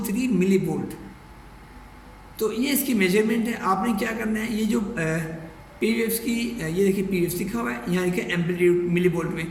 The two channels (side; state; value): both; identical; correlation 1.00